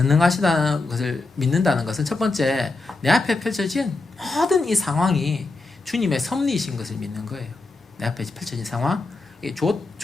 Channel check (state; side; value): quieter; right; 3.4 dB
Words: 것을 믿는다는 것은 첫 번째, 내 앞에 펼쳐진 모든 이 상황이 주님의 섭리이신 것을 믿는 거예요. 내 앞에 펼쳐진 상황,